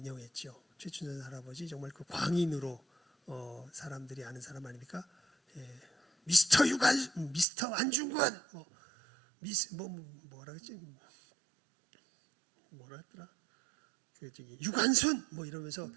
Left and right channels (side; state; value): left; drops out; at 7.5 s